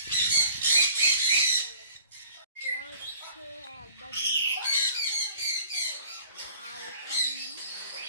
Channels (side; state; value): both; inverted; correlation -0.50